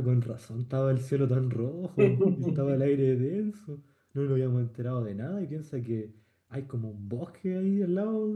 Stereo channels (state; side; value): identical; both; correlation 1.00